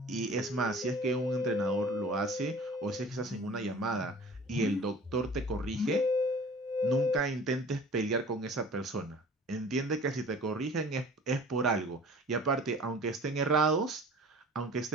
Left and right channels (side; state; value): both; normal; correlation 0.45